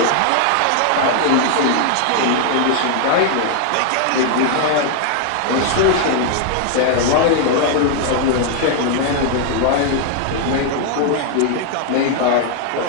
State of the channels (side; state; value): both; different; correlation 0.00